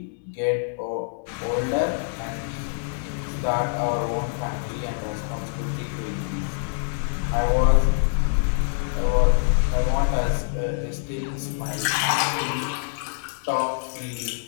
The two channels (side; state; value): right; silent; 62 dB below the other